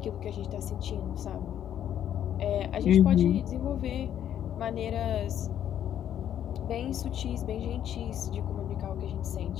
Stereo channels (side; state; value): right; quieter; 10.3 dB